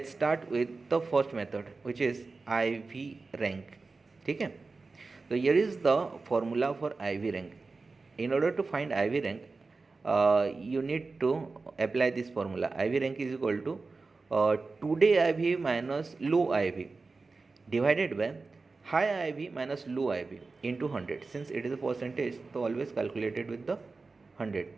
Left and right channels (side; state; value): left; quieter; 3.9 dB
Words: start with the first method which is IV rank. ठीक है, so here is the formula for IV rank. In order to find IV rank, you need to apply this formula. IV rank is equal to today IV minus low IV divided by high IV minus low IV into 100. Since it is a percentage, तो always calculated with the 100.